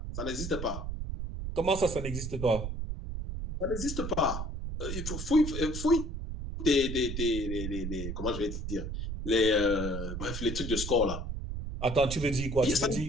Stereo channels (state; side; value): noise; right; rumble, 5 dB below the sound